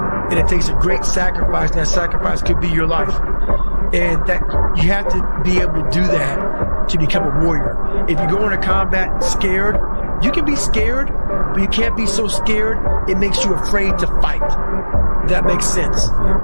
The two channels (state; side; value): inverted; both; correlation -1.00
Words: it takes a great sacrifice, and that sacrifice could be your life. And that you have to be able to do that to become a warrior. If you go into combat scared, you can be scared, but you can't be so scared it makes you afraid to fight. That makes sense.